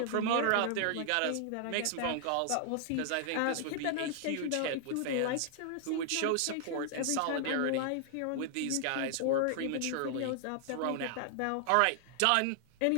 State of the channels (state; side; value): different; both; correlation 0.00